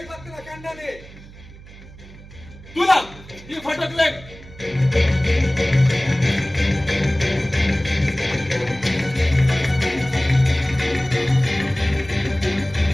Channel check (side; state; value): right; noise; hum, 19 dB below the sound